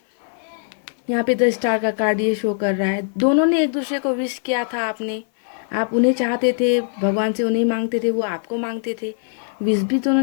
यहाँ पे 10 स्टार का कार्ड ये शो कर रहा है, दोनों ने एक दूसरे को विश किया था। आप उन्हें चाहते थे, भगवान से उन्हें मांगते थे, वो आपको मांगते थे, विश भी दोनों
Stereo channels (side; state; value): right; silent; 65 dB below the other